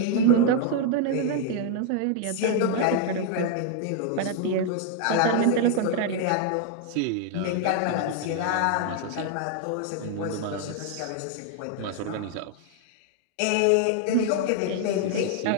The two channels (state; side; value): different; both; correlation 0.00